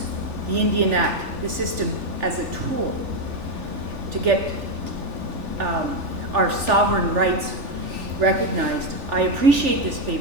the Indian Act, the system, as a tool to get our sovereign rights recognized. I appreciate this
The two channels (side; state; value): left; late; 3.4 ms